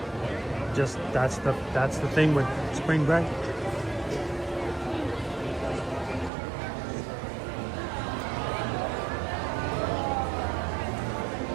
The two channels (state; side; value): drops out; left; at 6.3 s